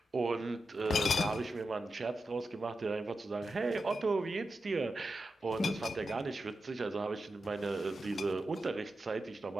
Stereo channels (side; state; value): both; normal; correlation 0.89